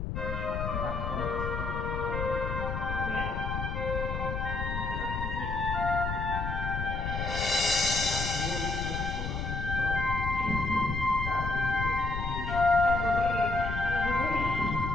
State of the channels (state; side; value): noise; left; rumble, 3 dB below the sound